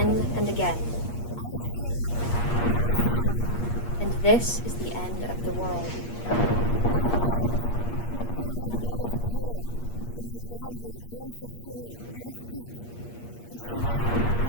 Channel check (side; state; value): right; late; 8.5 ms